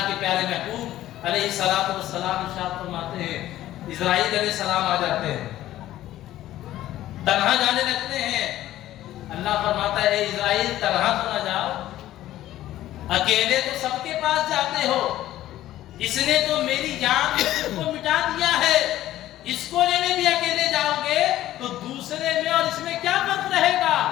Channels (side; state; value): right; quieter; 14.0 dB